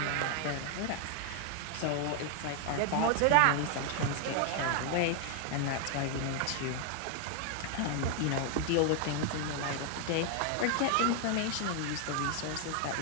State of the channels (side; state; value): both; different; correlation 0.00